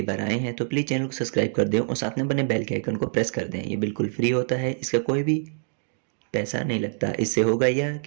बार आए हैं तो प्लीज़ चैनल को सब्सक्राइब कर दें और साथ में बने बेल के आइकन को प्रेस कर दें। ये बिल्कुल फ्री होता है, इसका कोई भी पैसा नहीं लगता। इससे होगा यह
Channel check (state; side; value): silent; left; digital silence